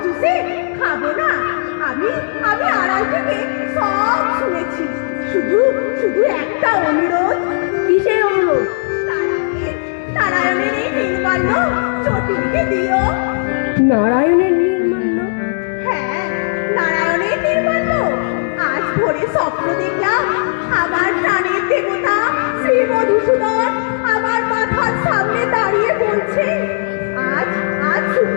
চুষে খাবো না। আমি আমি আড়াল থেকে সব শুনেছি। শুধু শুধু একটা অনুরোধ। কিসের অনুরোধ? নারায়ণের এই নির্মাল্য চটিকে দিও। নারায়ণের নির্মাল্য? হ্যাঁ, নারায়ণের নির্মাল্য। আজ ভোরে স্বপ্ন দেখলাম আমার প্রাণের দেবতা শ্রী মধুসূদন আমার মাথার সামনে দাঁড়িয়ে বলছে, আজ আজ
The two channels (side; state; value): right; silent; digital silence